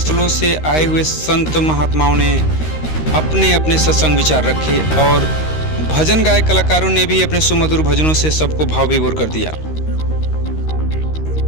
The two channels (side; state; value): right; late; 13 ms